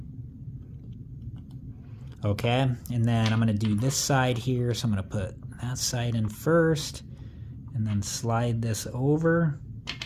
Okay, and then I'm going to do this side here. So I'm going to put that side in first and then slide this over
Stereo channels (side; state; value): both; identical; correlation 1.00